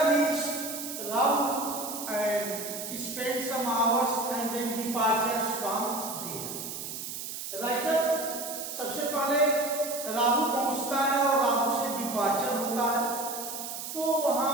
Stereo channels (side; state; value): right; noise; hiss, 7 dB below the sound